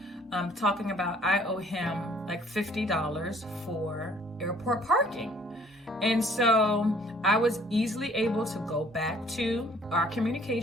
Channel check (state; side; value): normal; both; correlation 0.58